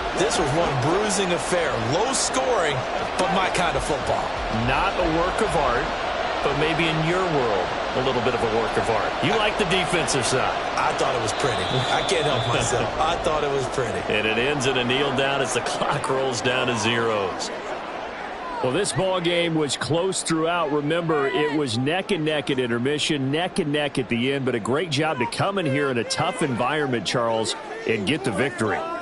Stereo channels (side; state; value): both; identical; correlation 1.00